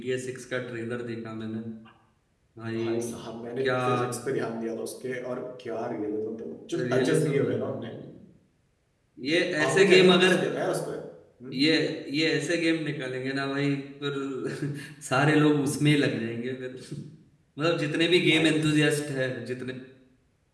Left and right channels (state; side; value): identical; both; correlation 1.00